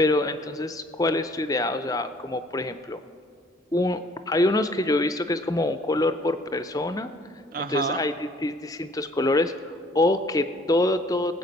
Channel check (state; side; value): normal; both; correlation 0.57